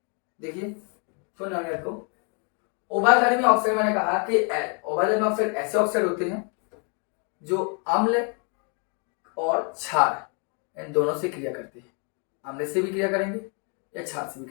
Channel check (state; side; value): quieter; right; 38.0 dB